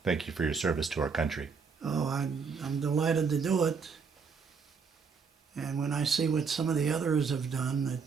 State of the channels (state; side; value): quieter; left; 5.5 dB